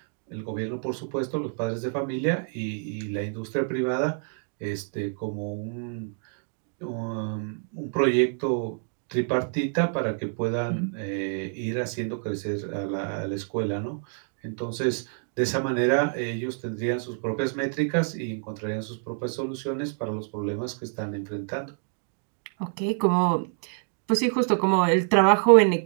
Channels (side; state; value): left; silent; 57 dB below the other